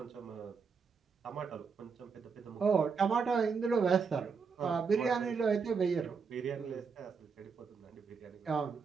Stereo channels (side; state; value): left; quieter; 5.5 dB